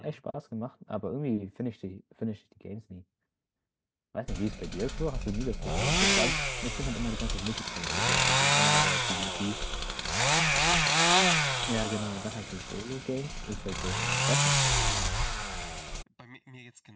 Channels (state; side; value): identical; both; correlation 1.00